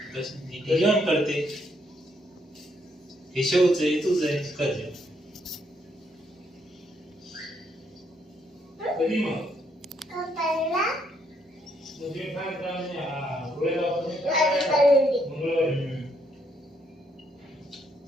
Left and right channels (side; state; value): both; normal; correlation 0.73